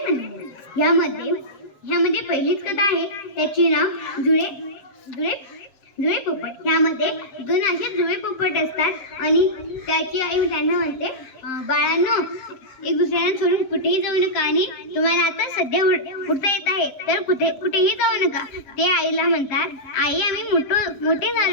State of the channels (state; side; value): late; right; 7.2 ms